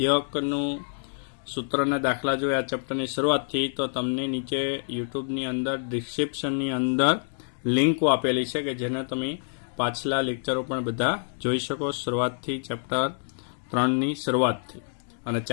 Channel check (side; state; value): right; silent; digital silence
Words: સૂત્રના દાખલા જોઈએ આ ચેપ્ટરની શરૂઆતથી, તો તમને નીચે યુટ્યુબની અંદર ડિસ્ક્રિપ્શનની અંદર લિંકો આપેલી છે કે જેને તમે પાછલા લેક્ચરો પણ બધા જોઈ શકો, શરૂઆતથી ચેપ્ટર 3ની શરૂઆતથી. અને